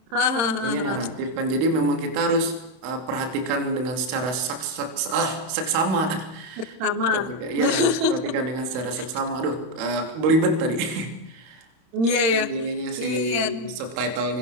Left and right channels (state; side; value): late; left; 31 ms